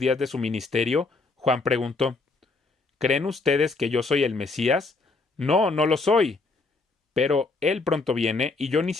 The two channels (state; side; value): quieter; right; 3.7 dB